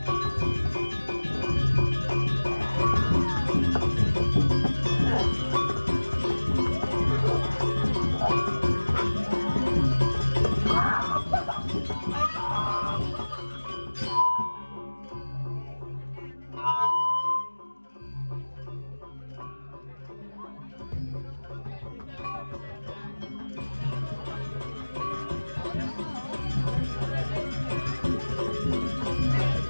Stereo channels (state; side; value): inverted; both; correlation -1.00